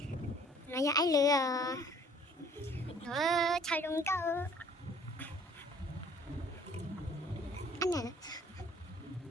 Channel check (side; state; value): both; normal; correlation 0.55